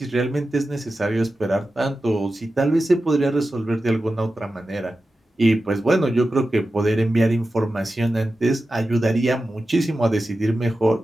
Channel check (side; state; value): both; normal; correlation 0.93